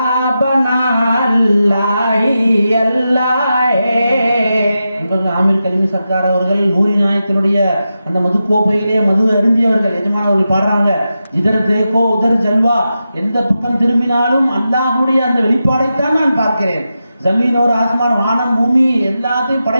बना अल्लाह ही अल्लाह है। ஆமீர் கலிமி சர்க்கார் அவர்கள் நூரி நாயத்தினுடைய அந்த மது கோப்பையிலே மது அருந்தியவர்கள் எஜமானவர்கள் பாடுறாங்க, இதர் தேக்கோ உதர் ஜல்வா, எந்த பக்கம் திரும்பினாலும் அல்லாஹ்வுடைய அந்த வெளிப்பாடைத்தான் நான் பார்க்கிறேன்। ஜமீன் ஒரு ஆஸ்மான், வானம் பூமி எல்லாத்தையும்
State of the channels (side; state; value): both; inverted; correlation -0.90